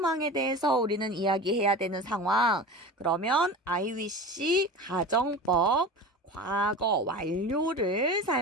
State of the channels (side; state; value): both; normal; correlation 0.32